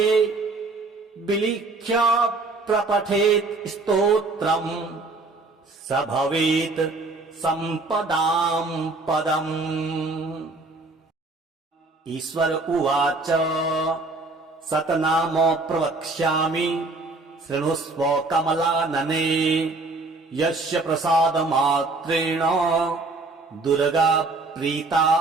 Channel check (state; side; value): quieter; left; 3.4 dB